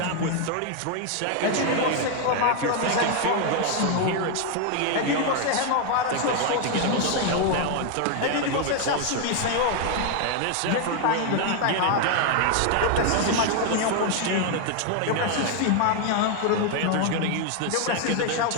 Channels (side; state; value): both; different; correlation 0.00